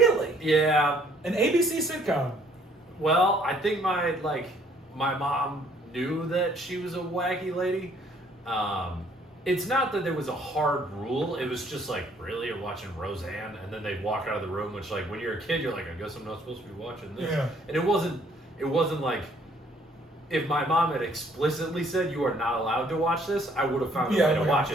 Yeah. An ABC sitcom. Well, I think my mom knew that she was a wacky lady. It's not that there was a hard rule. It was just like, really, you're watching Roseanne? And then they'd walk out of the room, which like when you're a kid, you're like, I guess I'm not supposed to be watching this. Yeah. And it wasn't like, if my mom had explicitly said you are not allowed to watch this, I would have found a way to watch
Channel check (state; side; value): normal; both; correlation 0.63